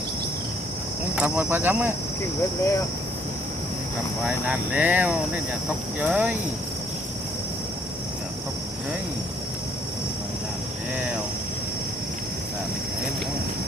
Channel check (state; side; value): normal; both; correlation 0.64